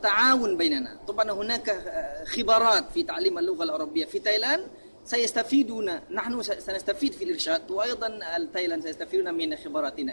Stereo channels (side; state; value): both; inverted; correlation -1.00